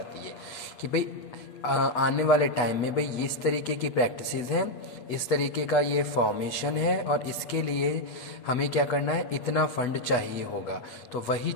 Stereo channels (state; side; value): late; right; 8.2 ms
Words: है कि भाई आने वाले टाइम में भाई इस तरीके की प्रैक्टिसेस हैं, इस तरीके का ये फॉर्मेशन है और इसके लिए हमें क्या करना है, इतना फंड चाहिए होगा। तो वही